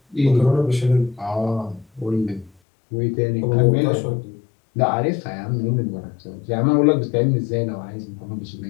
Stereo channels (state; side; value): drops out; right; at 2.5 s